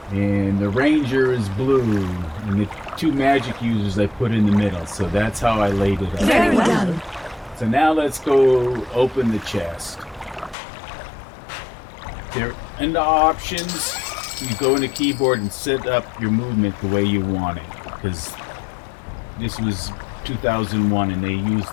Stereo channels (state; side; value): drops out; right; at 10.6 s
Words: and the ranger is blue, and the two magic users I put in the middle. So that's how I laid it out. Very well. So now let's go open the chest. There, in the options, you go in the keyboard and set up your movement the way you want it, because this was 2001 and they used